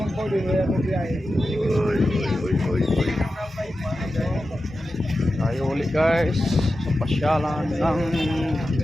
Uy. Tayo ulit guys sa pasyalan ng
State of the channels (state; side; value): normal; both; correlation 0.92